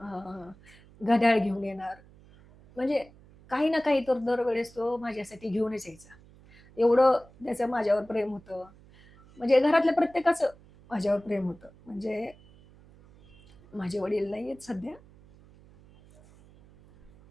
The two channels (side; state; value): right; noise; hum, 25 dB below the sound